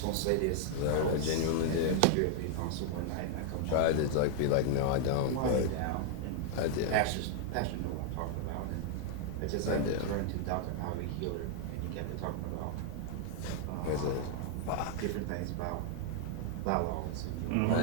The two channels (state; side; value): different; both; correlation 0.00